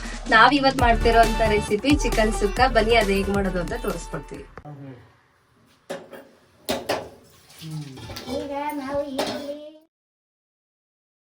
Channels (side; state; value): both; identical; correlation 1.00